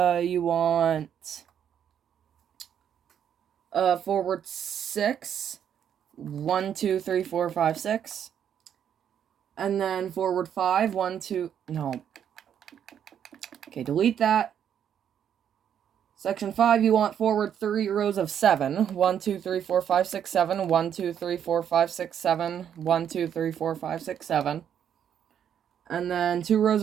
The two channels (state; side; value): quieter; left; 9.0 dB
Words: want forward 6. 1, 2, 3, 4, 5, 6. And then forward 5. 1, 2. No. Okay, delete that. Section 5, you want forward 3 rows of 7. 1, 2, 3, 4, 5, 6, 7. 1, 2, 3, 4, 5, 6, 7. 1, 2, 3, 4, 5, 6, 7. And then 2 rows